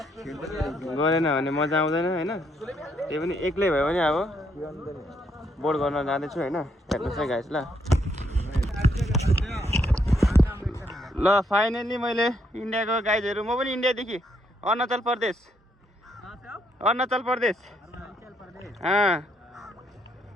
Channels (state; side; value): normal; both; correlation 0.74